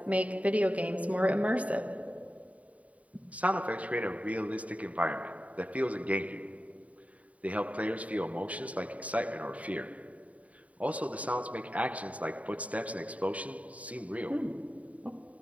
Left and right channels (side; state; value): left; late; 0.068 ms